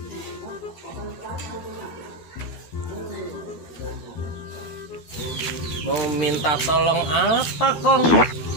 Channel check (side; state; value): right; late; 12 ms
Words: Mau minta tolong apa kong?